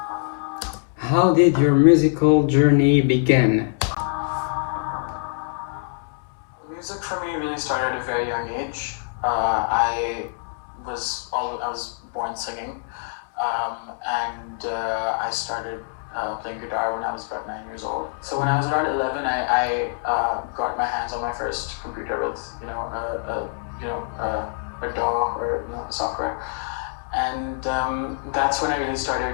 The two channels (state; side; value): silent; right; 61 dB below the other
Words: How did your musical journey begin? Music for me really started at a very young age. I was born singing, and I started playing guitar when I was about 9 years old. So when I was around 11, I got my hands on my first computer with a DAW or software, and that's when I really started